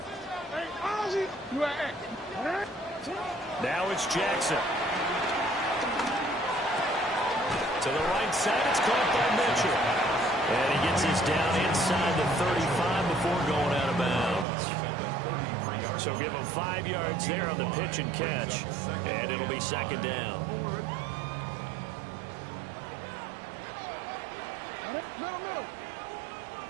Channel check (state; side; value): drops out; left; at 14.5 s